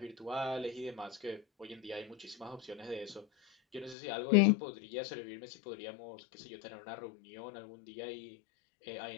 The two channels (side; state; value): right; drops out; at 4.0 s